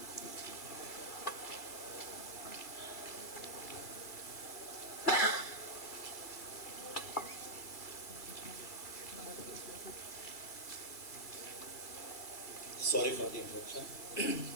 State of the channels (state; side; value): late; right; 2.2 ms